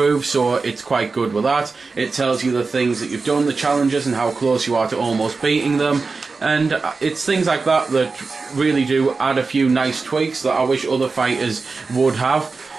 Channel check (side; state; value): left; quieter; 4.2 dB